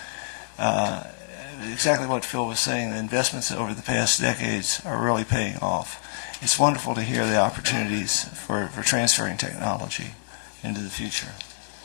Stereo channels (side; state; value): right; silent; digital silence